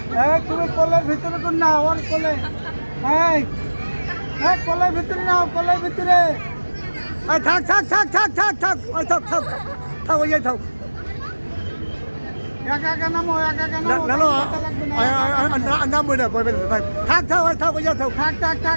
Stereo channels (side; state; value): both; inverted; correlation -1.00